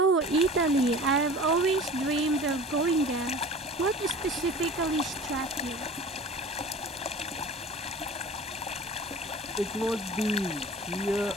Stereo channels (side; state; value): both; normal; correlation 0.41